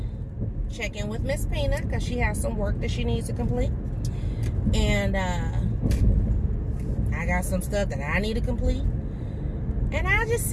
check in with Miss Peanut because she has some work that she needs to complete. And I got some stuff that I need to complete. And I'll just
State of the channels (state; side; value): identical; both; correlation 1.00